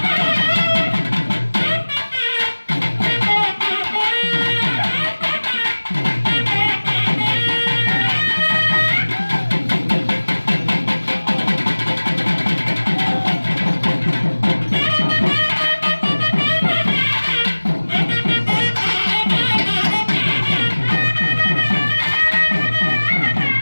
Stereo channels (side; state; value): both; inverted; correlation -1.00